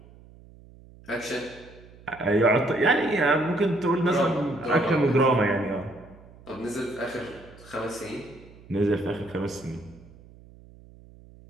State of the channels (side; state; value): right; noise; hum, 22 dB below the sound